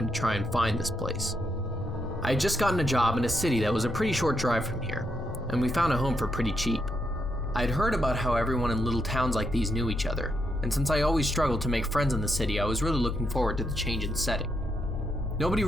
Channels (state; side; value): normal; both; correlation 0.80